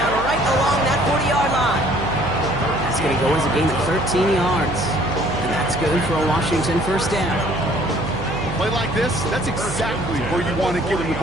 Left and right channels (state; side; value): noise; right; hum, 7 dB below the sound